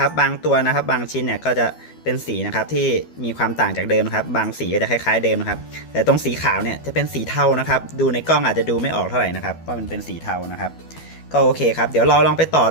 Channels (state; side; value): late; right; 12 ms